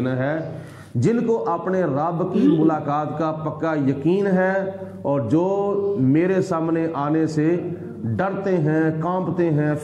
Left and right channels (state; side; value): identical; both; correlation 1.00